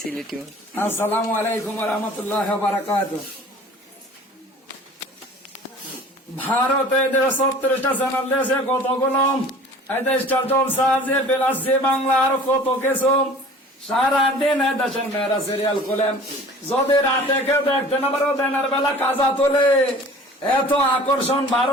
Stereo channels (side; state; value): both; normal; correlation 0.45